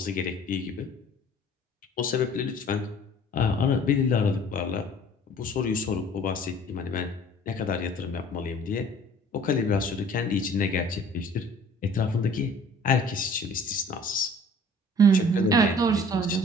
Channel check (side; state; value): both; normal; correlation 0.50